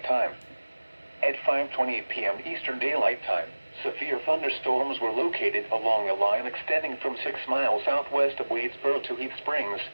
Time. At 5:28 p.m. Eastern Daylight Time, severe thunderstorms were located along a line extending from 6 miles southwest of Wadesboro to Heath Springs,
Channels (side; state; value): both; inverted; correlation -1.00